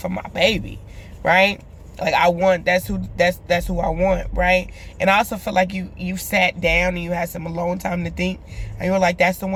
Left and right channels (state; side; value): identical; both; correlation 1.00